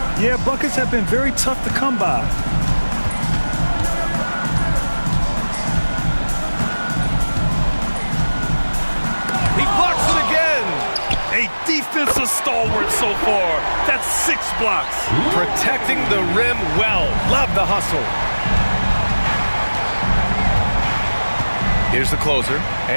Yeah, buckets have been very tough to come by. He blocks it again. A defensive stalwart so far. That's 6 blocks. Protecting the rim well. Love the hustle. Here's the closer.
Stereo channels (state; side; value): inverted; both; correlation -1.00